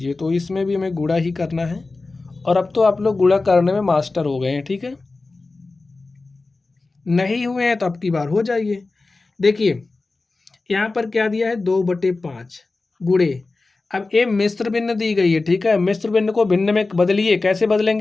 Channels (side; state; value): right; quieter; 3.5 dB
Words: तो इसमें भी हमें गुणा ही करना है, और अब तो आप लोग गुणा करने में मास्टर हो गए हैं, ठीक है। नहीं हुए हैं तो अब की बार हो जाइए। देखिए यहाँ पर क्या दिया है? 2/5 गुणे, अब ये मिश्र भिन्न दी गई है, ठीक है। मिश्र भिन्न को भिन्न में बदलिए, कैसे